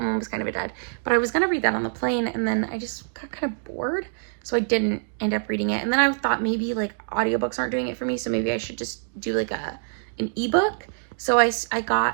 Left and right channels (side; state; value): left; silent; digital silence